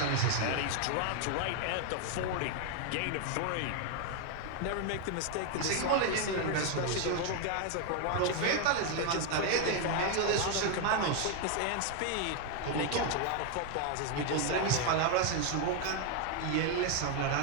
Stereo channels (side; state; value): both; different; correlation 0.01